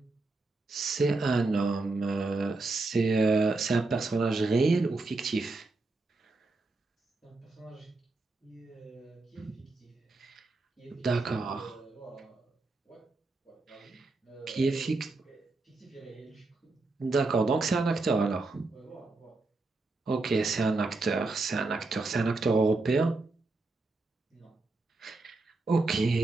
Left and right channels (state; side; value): quieter; left; 3.4 dB